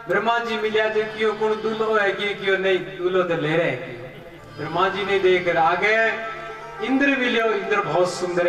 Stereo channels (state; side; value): identical; both; correlation 1.00